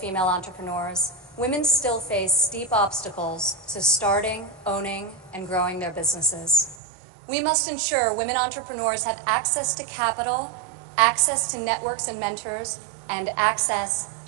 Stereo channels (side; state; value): left; drops out; at 6.8 s